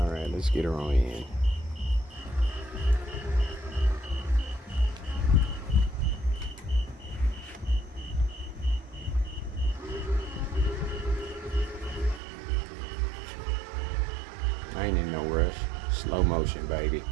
let's get her on in. I ain't in no rush. Slow motion, baby.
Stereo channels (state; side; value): drops out; left; at 12.2 s